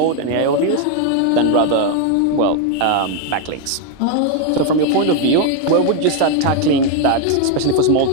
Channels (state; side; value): different; both; correlation 0.01